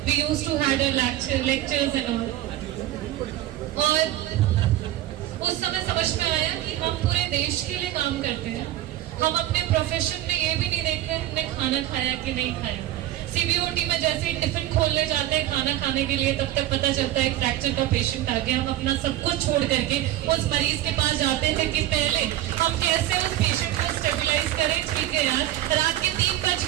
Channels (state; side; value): quieter; left; 13.9 dB